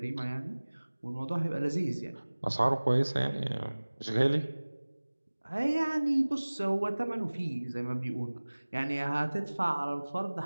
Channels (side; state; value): both; inverted; correlation -1.00